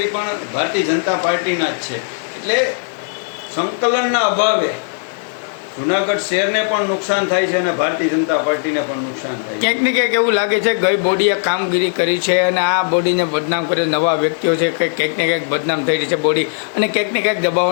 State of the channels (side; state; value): right; silent; 63 dB below the other